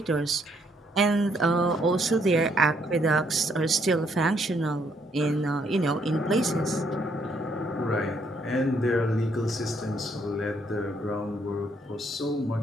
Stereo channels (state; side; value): normal; both; correlation 0.70